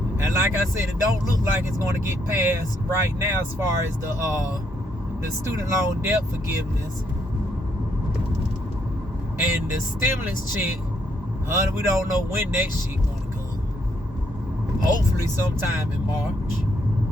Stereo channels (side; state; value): both; normal; correlation 0.73